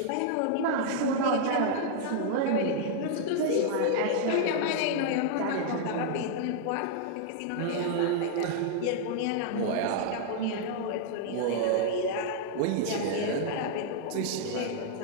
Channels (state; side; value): different; both; correlation -0.01